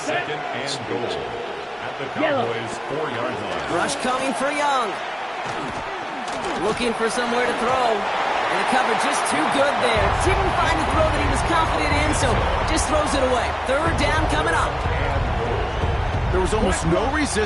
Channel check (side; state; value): both; identical; correlation 1.00